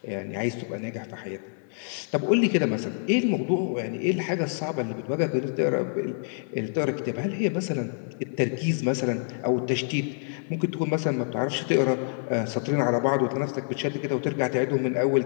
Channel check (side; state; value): right; silent; 60 dB below the other